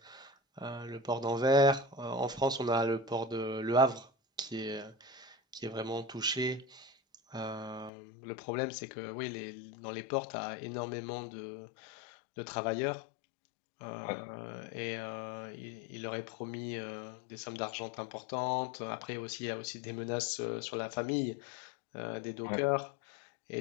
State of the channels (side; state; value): right; drops out; at 7.9 s